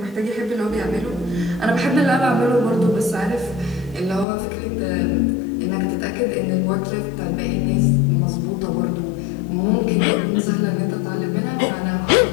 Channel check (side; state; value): right; drops out; at 4.2 s